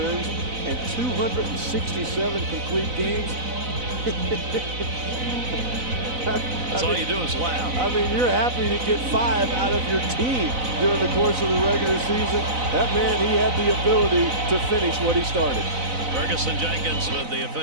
and 267 complete games. That's all you do is laugh. I mean, you're happy to get 5 out of your team during the course of the regular season. That man, he had the ability to finish what he started. Ferguson Jenkins with the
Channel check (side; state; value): left; late; 4.0 ms